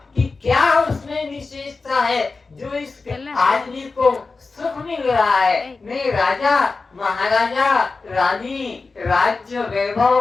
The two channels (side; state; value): right; quieter; 4.0 dB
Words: कि क्या उसमें विशेषता है जो इस आदमी को सुख मिल रहा है? मैं राजा, महाराजा, रानी, राज्य, वैभव